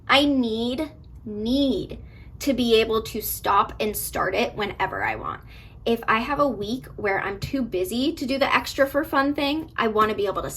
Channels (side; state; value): both; identical; correlation 1.00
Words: I need to be able to stop and start it whenever I want. If I have a week where I'm too busy to do the extra for fun thing, I want to be able to